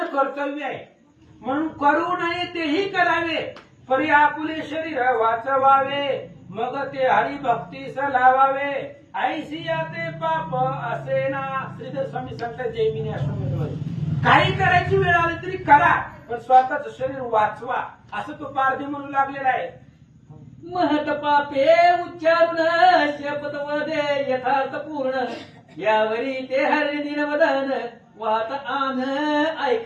कर्तव्य आहे, म्हणून करू नये तेही करावे. परी आपुले शरीर वाचवावे मग ते हरिभक्तीस लावावे. ऐसिया ते पाप असे ना. श्रीधर स्वामी सांगतात जैमिनी आश्रम, काही करायची वेळ आली तरी करा पण स्वतःच शरीर वाचवा असं तो पारधी म्हणू लागलेला आहे. महत पापे उच्चारून शपथ वदे यथार्थ पूर्ण. यावरी ते हरिणी दिनवदन वाहत आन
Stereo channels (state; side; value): identical; both; correlation 1.00